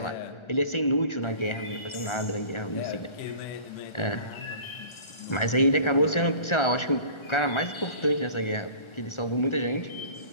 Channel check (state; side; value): late; right; 1.4 ms